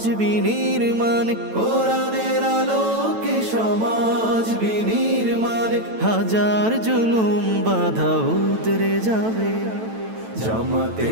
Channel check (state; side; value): late; left; 9.1 ms